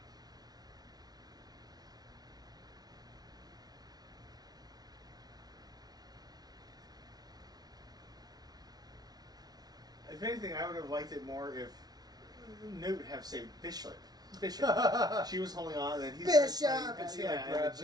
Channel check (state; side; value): late; left; 0.19 ms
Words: If anything, I would have liked it more if Newt would have saved Bishop. Bishop. She was holding on, and then he's Bishop! like, And she, yeah, like, and then grabs